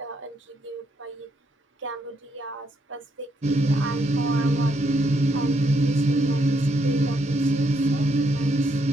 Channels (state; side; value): normal; both; correlation 0.75